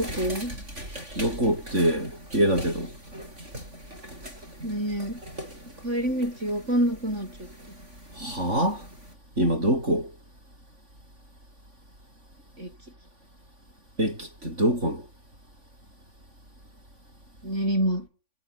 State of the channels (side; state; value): left; late; 3.5 ms